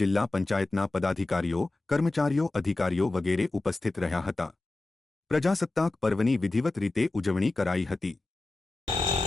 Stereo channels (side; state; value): right; quieter; 3.0 dB